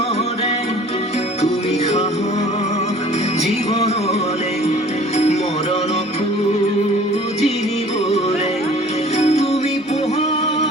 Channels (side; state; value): both; normal; correlation 0.49